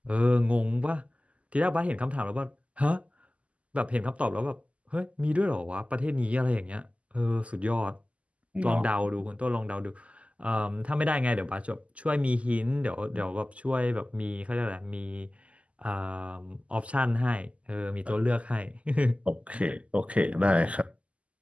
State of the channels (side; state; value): left; late; 0.064 ms